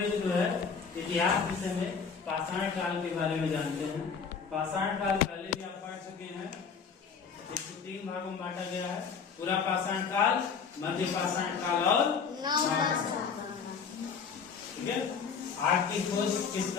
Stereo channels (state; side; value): quieter; right; 6.0 dB